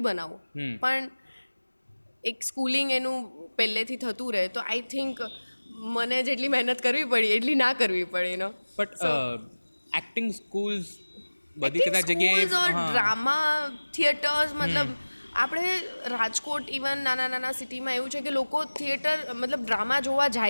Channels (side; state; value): both; inverted; correlation -1.00